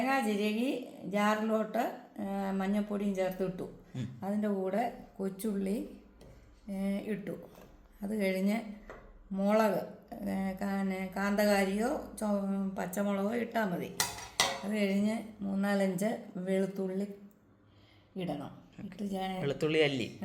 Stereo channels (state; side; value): identical; both; correlation 1.00